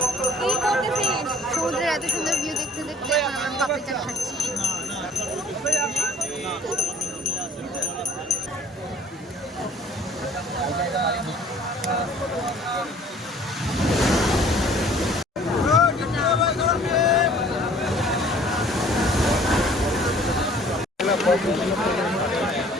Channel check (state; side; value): normal; both; correlation 0.53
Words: সমুদ্রের এত সুন্দর ভিউ দেখতে দেখতে আমরা পাপড়ি চাট খাচ্ছি।